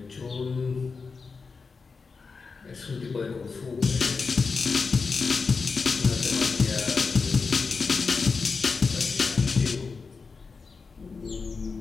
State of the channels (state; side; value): quieter; right; 4.8 dB